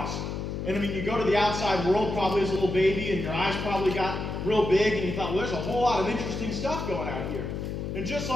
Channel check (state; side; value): noise; left; hum, 4 dB below the sound